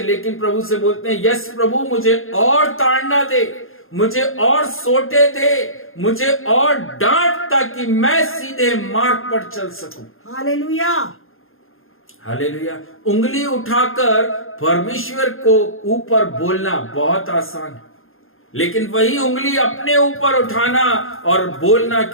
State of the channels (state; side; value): late; right; 0.60 ms